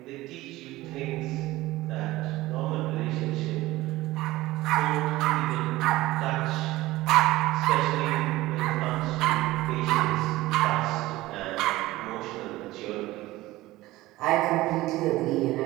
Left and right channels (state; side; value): quieter; left; 17.9 dB